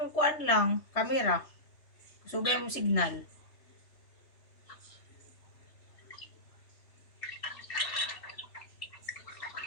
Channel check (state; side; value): late; right; 3.2 ms